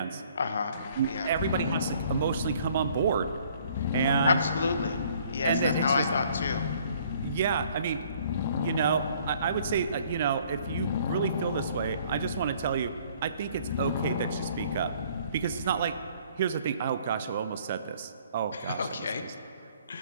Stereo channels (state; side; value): inverted; both; correlation -0.59